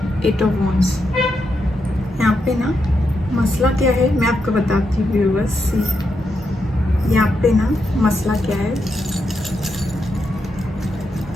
Eight of Wands. यहाँ पे ना मसला क्या है मैं आपको बताती हूँ व्यूअर्स। यहाँ पे ना मसला क्या है,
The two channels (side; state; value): both; normal; correlation 0.83